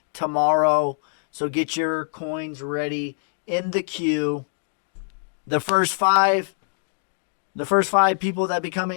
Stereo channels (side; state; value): right; silent; digital silence